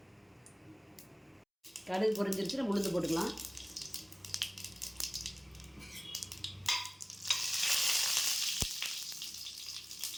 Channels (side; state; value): both; identical; correlation 1.00